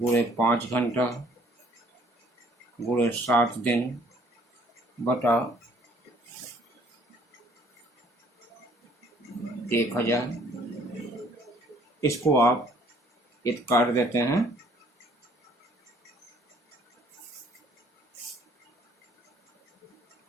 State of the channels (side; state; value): both; normal; correlation 0.60